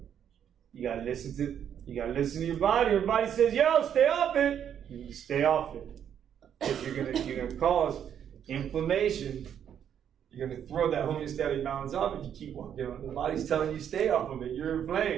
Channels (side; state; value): left; quieter; 9.0 dB